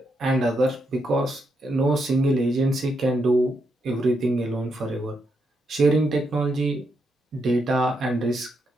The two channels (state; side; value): normal; both; correlation 0.81